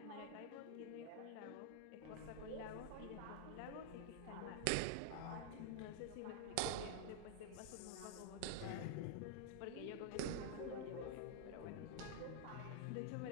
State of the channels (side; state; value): both; different; correlation 0.00